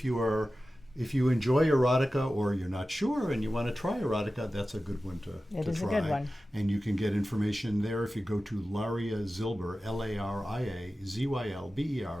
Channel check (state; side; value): normal; both; correlation 0.95